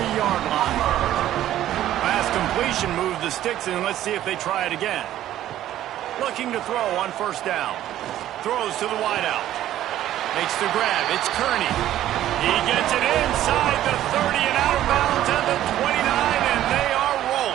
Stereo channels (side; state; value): left; quieter; 12.8 dB